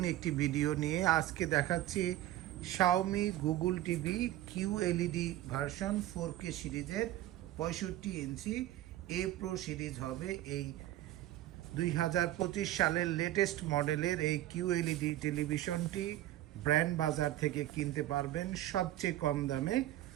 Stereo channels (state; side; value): quieter; left; 14.4 dB